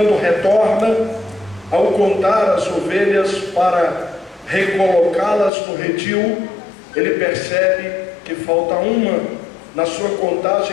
retorna, ao contar as ovelhas para recolocá-las no redil, ele percebe que falta uma. Na sua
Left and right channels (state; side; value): drops out; right; at 5.5 s